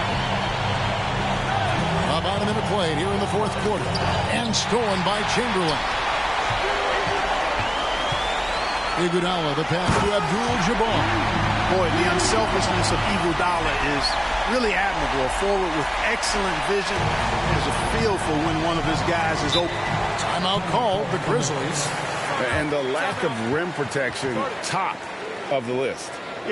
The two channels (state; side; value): identical; both; correlation 1.00